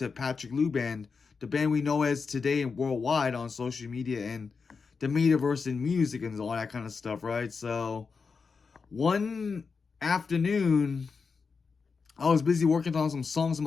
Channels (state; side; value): quieter; right; 5.1 dB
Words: Patrick Lou band, the band we know as today and worldwide on social media and the metaverse and music and all that kind of stuff, right? So one afternoon, I was busy working on some songs in